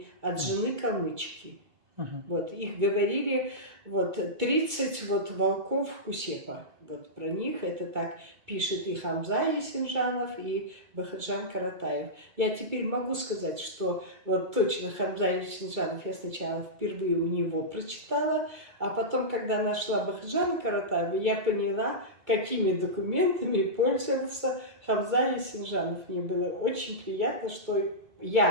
от жены калмычки. Вот, их говорили, вот, 30 вот, волков Кусепа. Вот про них это так пишет и Хамза Есенжанов, и Бахаджан Каратаев. Я теперь могу сказать, что вот точно Хамза Есенжанов я сначала впервые у него прочитала, а потом, когда нашла Бахаджана Каратаева, я поняла, какими документами пользовался Хамза Есенжанов. Мне было очень приятно, что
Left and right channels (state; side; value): late; left; 2.2 ms